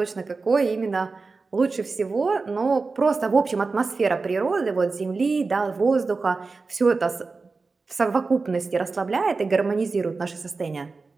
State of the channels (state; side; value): quieter; left; 4.1 dB